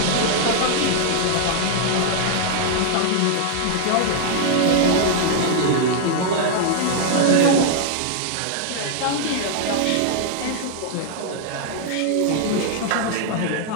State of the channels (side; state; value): both; different; correlation 0.00